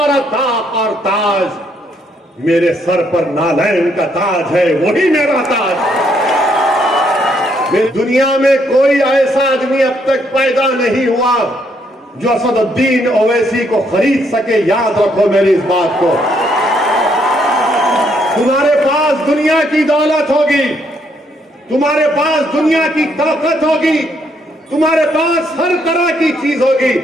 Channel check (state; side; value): normal; both; correlation 0.72